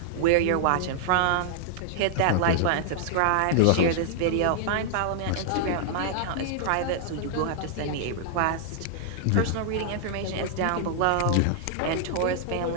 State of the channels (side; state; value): both; different; correlation -0.01